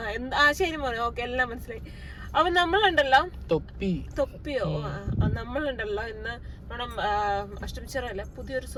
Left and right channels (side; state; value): both; identical; correlation 1.00